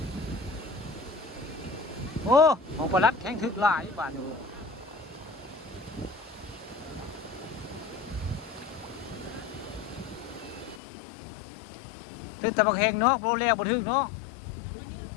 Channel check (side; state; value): right; drops out; at 10.8 s